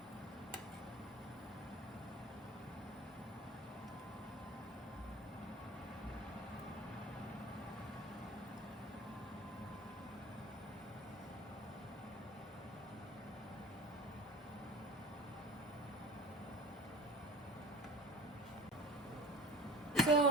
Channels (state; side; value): normal; both; correlation 0.38